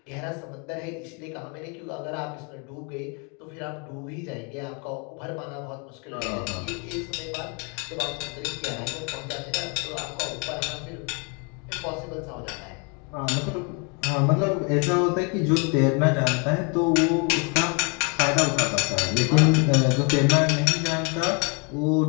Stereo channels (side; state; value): right; quieter; 35.0 dB